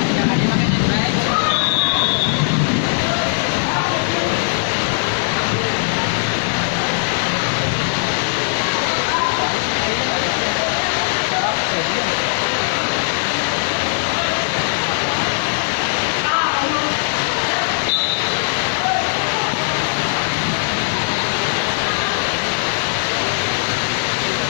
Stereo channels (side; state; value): right; silent; digital silence